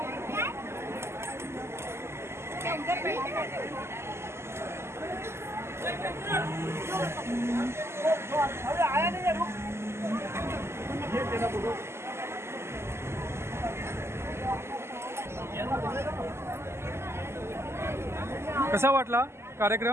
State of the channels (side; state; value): left; late; 0.12 ms